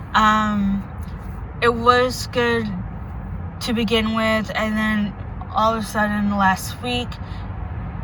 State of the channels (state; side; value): identical; both; correlation 1.00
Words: It was good to begin with, and then all of a sudden last week,